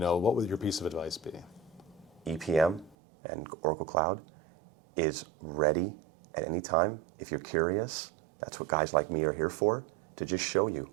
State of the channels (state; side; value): drops out; left; at 3.0 s